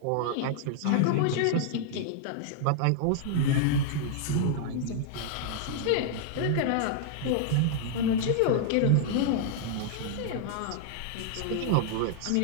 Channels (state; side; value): different; both; correlation -0.01